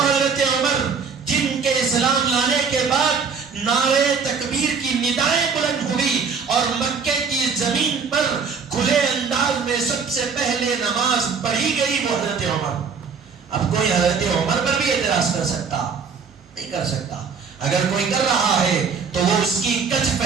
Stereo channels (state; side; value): quieter; left; 5.7 dB